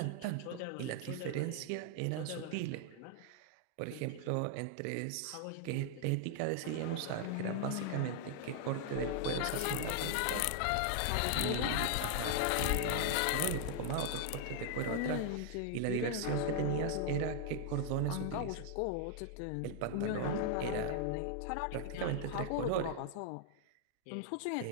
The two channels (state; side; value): different; both; correlation 0.00